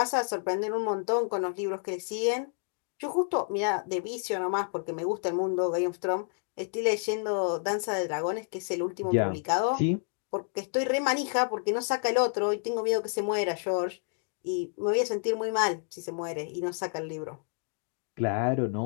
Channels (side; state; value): right; silent; 57 dB below the other